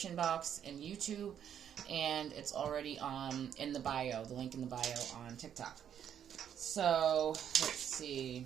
box in YouTube, and it's already in the bio, the link in the bio on TikTok. So, let's see.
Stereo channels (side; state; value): left; quieter; 9.1 dB